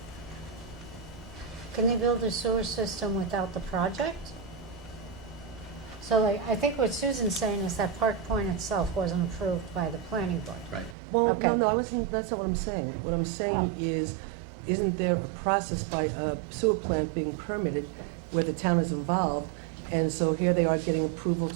Can they build a sewer system without the project? So like, I think what Susan's saying is that Park Point itself wasn't approved by the planning board. Right. Well, Okay. no, I wasn't, that's not what I'm saying. What I'm saying is, isn't there a process by a sewer plant being permitted where the town is involved? And so here they are getting approval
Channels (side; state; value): left; drops out; at 11.0 s